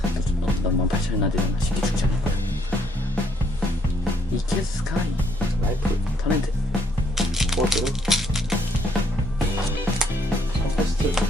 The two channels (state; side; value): normal; both; correlation 0.69